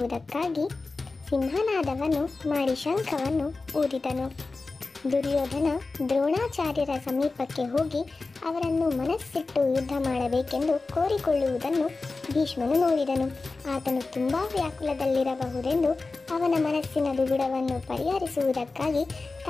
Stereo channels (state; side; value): quieter; right; 3.7 dB